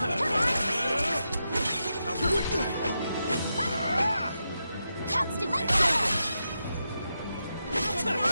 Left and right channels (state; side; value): inverted; both; correlation -0.87